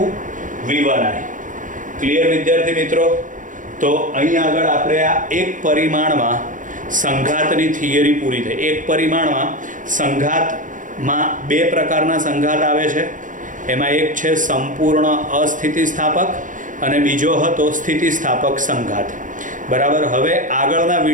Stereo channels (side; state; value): left; late; 0.38 ms